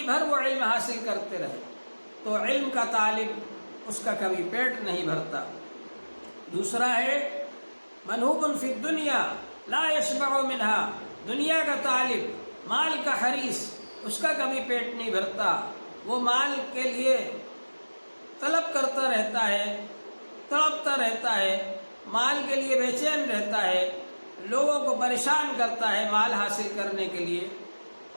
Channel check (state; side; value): inverted; both; correlation -1.00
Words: بھر وہ علم حاصل کرتے رہے، تو علم کا طالب اس کا کبھی پیٹ نہیں بھرتا۔ دوسرا ہے منہوب فی الدنیا لا یشبع منہا، دنیا کا طالب، مال کا حریص، اس کا کبھی پیٹ نہیں بھرتا، وہ مال کے لیے طلب کرتا رہتا ہے، تڑپتا رہتا ہے، مال کے لیے بے چین رہتا ہے، لوگوں کو پریشان کرتا ہے مال حاصل کرنے کے لیے۔